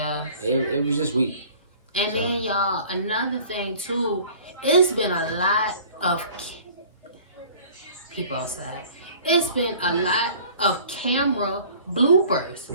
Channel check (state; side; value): inverted; both; correlation -0.48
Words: it was just weak. And then y'all, another thing too, it's been a lot of people outside. It's been a lot of camera bloopers.